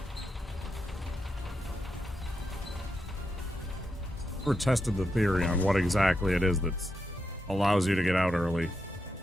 Never tested the theory on what exactly it is that allows you to get out early.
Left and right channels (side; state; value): both; normal; correlation 0.85